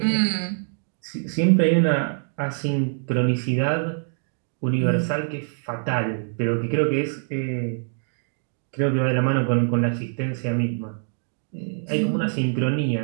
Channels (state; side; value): silent; left; 62 dB below the other